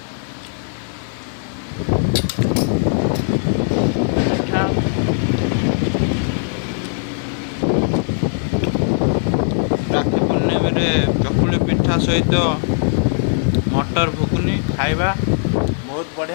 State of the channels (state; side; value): silent; right; 56 dB below the other